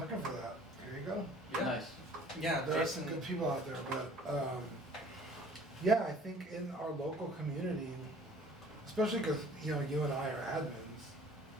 for that. Here you go. Yeah. Nice. Yeah, There are Jason. some good people out there, but yeah, I think in our local community, especially because you know you and I are admins,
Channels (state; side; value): normal; both; correlation 0.52